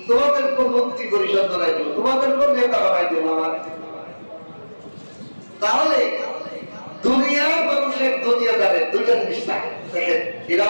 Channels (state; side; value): inverted; both; correlation -1.00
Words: তোমাদের কোন মন্ত্রী পরিষদ বানাই দেব, তোমাদের কোন নেতা বানাই দেব আমার। তাহলে দুনিয়ার মানুষের দুনিয়াদারের দুইটা জিনিস থাকে, দেখেন